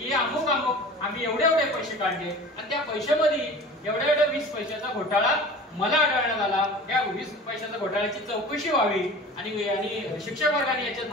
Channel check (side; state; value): both; normal; correlation 0.39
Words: अमुक आम्ही एवढे पैसे काढले आणि त्या पैशामध्ये एवढ्या 20 पैशाचा घोटाळा मला आढळण्यात आला. या 20 पैशाच्या घोटाळ्याची चौकशी व्हावी आणि शिक्षक वर्गाने याच्यात